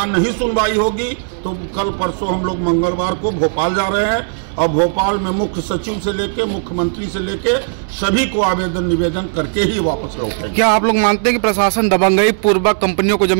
नहीं सुनवाई होगी तो कल परसों हम लोग मंगलवार को भोपाल जा रहे हैं और भोपाल में मुख्य सचिव से लेके मुख्यमंत्री से लेके सभी को आवेदन निवेदन करके ही वापस लौटेंगे। क्या आप लोग मानते हैं कि प्रशासन दबंगई पूर्वक कंपनियों को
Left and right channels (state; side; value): silent; left; 61 dB below the other